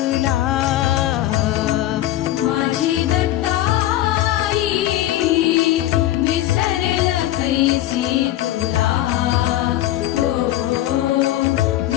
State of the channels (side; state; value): right; quieter; 14.0 dB